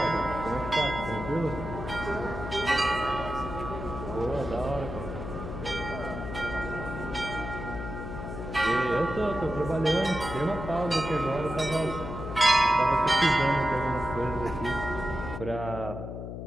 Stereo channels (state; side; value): noise; left; hum, 7 dB below the sound